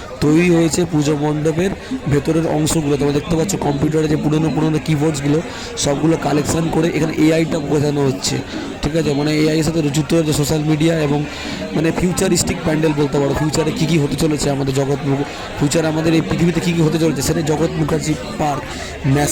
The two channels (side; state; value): both; identical; correlation 1.00